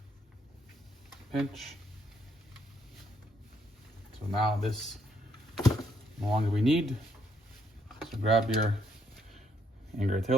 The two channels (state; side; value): normal; both; correlation 0.72